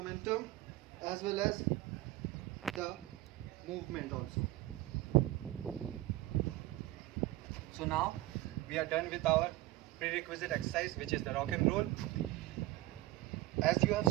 as well as the movement also. So now we are done with our prerequisite exercise, which is the rock and roll. As you have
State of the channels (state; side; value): quieter; left; 17.5 dB